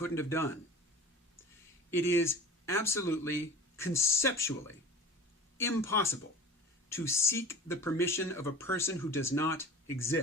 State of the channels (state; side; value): normal; both; correlation 0.39